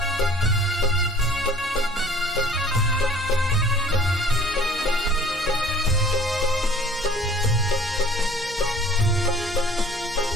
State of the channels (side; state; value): both; normal; correlation 0.50